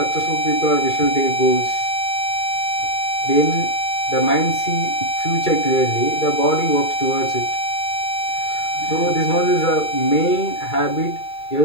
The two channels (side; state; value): right; late; 2.3 ms